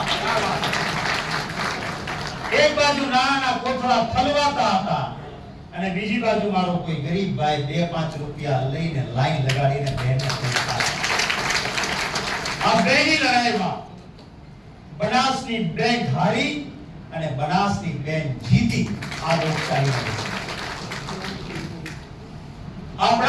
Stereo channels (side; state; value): both; identical; correlation 1.00